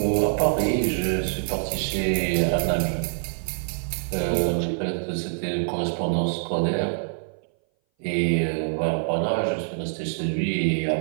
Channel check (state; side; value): silent; left; 59 dB below the other